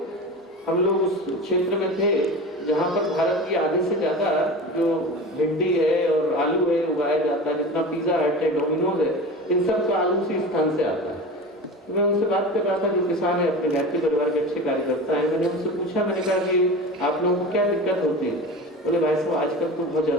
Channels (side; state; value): both; normal; correlation 0.31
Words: हम लोग उस क्षेत्र में थे जहाँ पर भारत की आधे से ज्यादा जो भिंडी है और आलू है उगाया जाता है। जितना पिज्जा हट है, डोमिनोज है, इन सब का आलू उसी स्थान से आता है। तो मैं उनसे बात कर रहा था, जो किसान है, अपने घर के परिवार के अच्छे कार्यकर्ता है। मैंने उनसे पूछा, मैंने कहा कि आप लोगों को क्या दिक्कत होती है? बोले भाई साहब आजकल तो बहुत